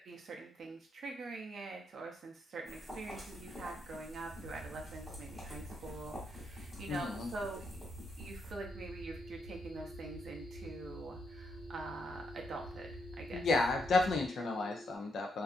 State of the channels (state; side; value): normal; both; correlation 0.78